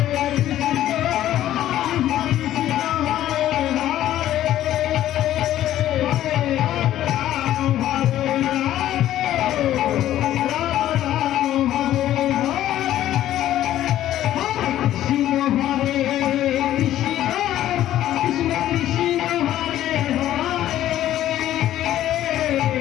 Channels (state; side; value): quieter; right; 12.8 dB